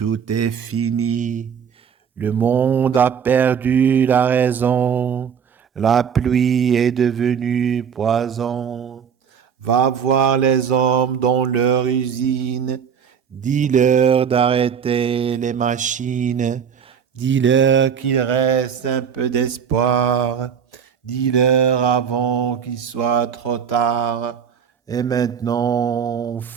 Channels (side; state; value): left; quieter; 7.4 dB